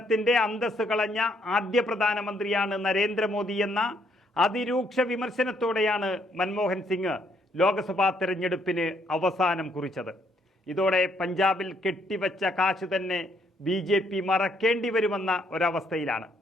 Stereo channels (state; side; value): normal; both; correlation 0.71